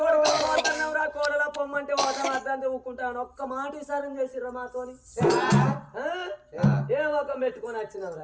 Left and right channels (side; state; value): both; identical; correlation 1.00